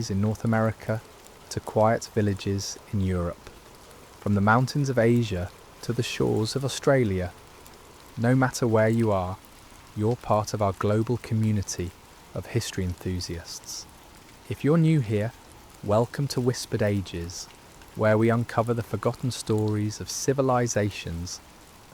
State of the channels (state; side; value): identical; both; correlation 1.00